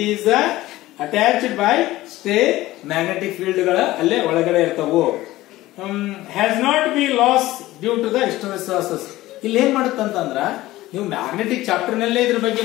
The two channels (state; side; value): quieter; right; 16.9 dB